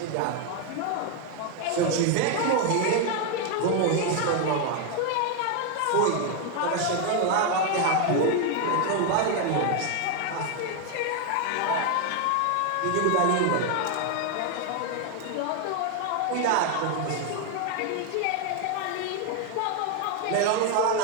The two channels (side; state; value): both; different; correlation 0.01